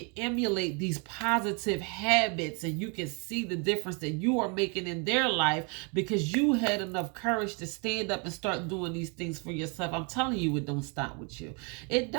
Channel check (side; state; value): left; quieter; 34.4 dB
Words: emulate these positive habits and you can see the difference that you are making in their life because you had enough courage to stand up and start doing these things for yourself. I'm telling you, it don't stop with you. It